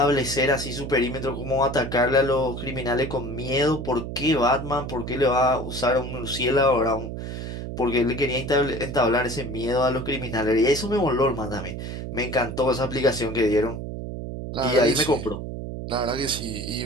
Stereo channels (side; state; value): right; noise; hum, 7 dB below the sound